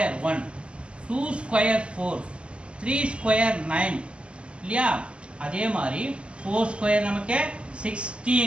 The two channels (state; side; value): late; left; 0.054 ms